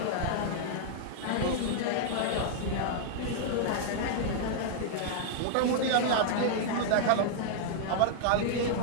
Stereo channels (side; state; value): both; different; correlation -0.01